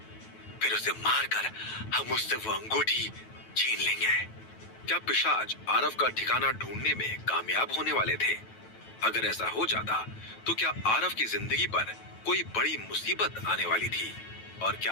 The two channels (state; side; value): late; right; 9.2 ms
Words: फिर उसे मारकर हम उससे वो अंगूठी छीन लेंगे। क्या पिशाच आरव का ठिकाना ढूंढने में कामयाब होने वाले थे? अगर ऐसा हो जाता तो क्या आरव की जिंदगी पर कोई बड़ी मुसीबत आने वाली थी? और